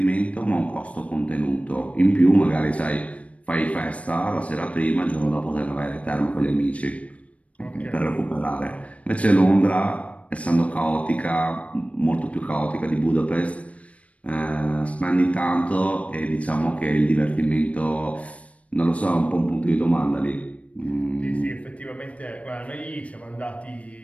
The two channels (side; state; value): right; late; 0.065 ms